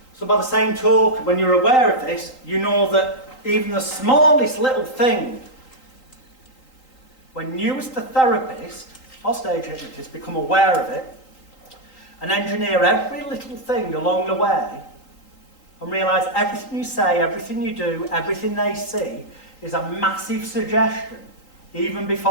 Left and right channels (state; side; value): late; right; 3.8 ms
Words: So by the same token, when you're aware of this, you know that even the smallest little thing, when you as the therapist or stage hypnotist become aware of it and engineer every little thing along the way and realise everything you say, everything you do, everything they see is a massive suggestion even